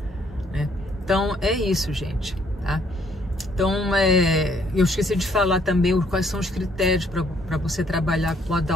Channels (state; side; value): normal; both; correlation 0.67